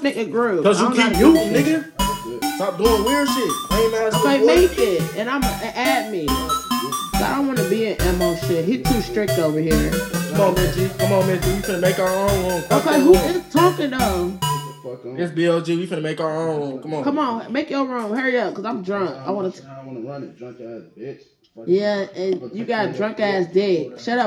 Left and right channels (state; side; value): identical; both; correlation 1.00